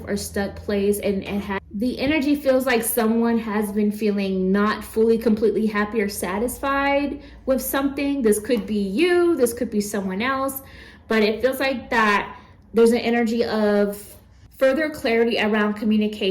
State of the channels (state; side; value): identical; both; correlation 1.00